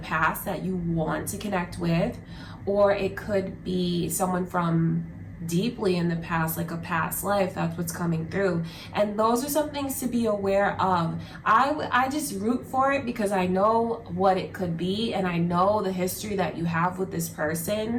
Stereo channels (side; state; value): both; identical; correlation 1.00